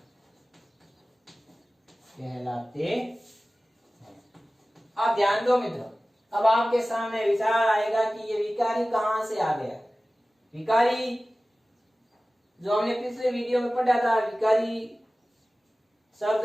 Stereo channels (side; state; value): both; normal; correlation 0.97